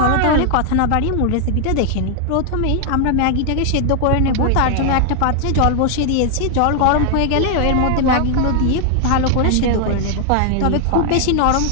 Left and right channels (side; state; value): both; different; correlation 0.00